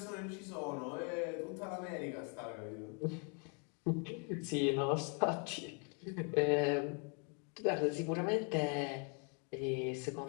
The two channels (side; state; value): right; quieter; 38.2 dB